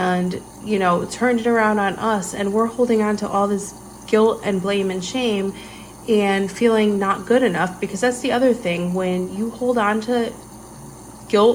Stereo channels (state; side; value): identical; both; correlation 1.00